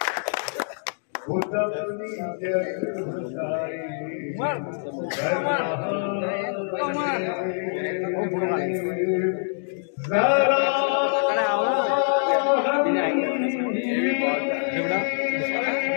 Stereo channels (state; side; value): silent; right; digital silence